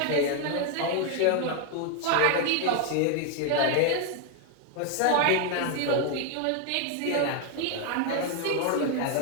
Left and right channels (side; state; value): both; different; correlation 0.01